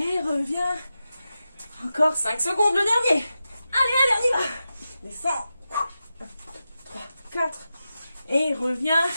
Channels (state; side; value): inverted; both; correlation -0.92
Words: reviens. Encore 5 secondes, le dernier. Allez, on y va. Descends. 1, 3, 4. Et reviens.